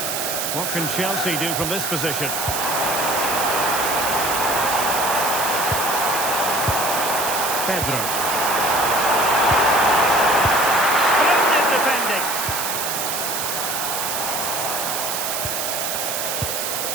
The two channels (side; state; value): right; noise; hiss, 2 dB below the sound